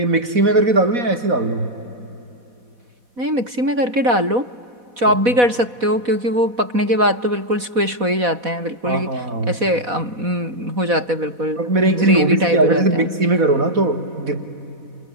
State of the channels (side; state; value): left; late; 4.1 ms